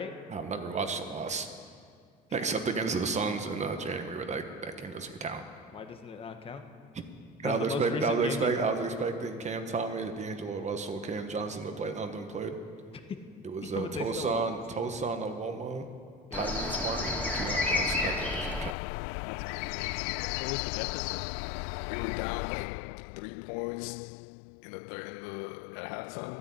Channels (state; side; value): drops out; right; at 18.8 s